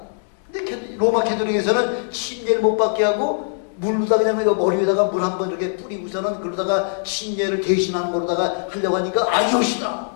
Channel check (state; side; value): silent; right; digital silence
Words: 근데 로마 캐톨릭에서는 침례를 못 받게 하고 물로다 그냥 머리 위에다가 물 한 번 이렇게 뿌리고서는 그러다가 침례를 대신하는 거로다가 하려고 하니까 아니오시다.